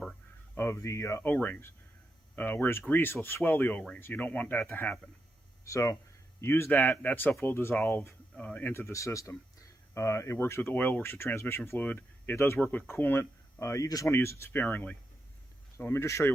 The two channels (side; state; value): both; normal; correlation 0.85